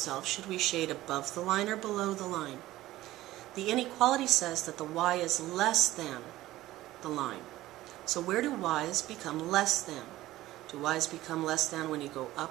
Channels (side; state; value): left; quieter; 16.0 dB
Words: should we shade above the line or below the line? The inequality says that the y is less than the line. So where do y's become less than? Do y's become less than when you go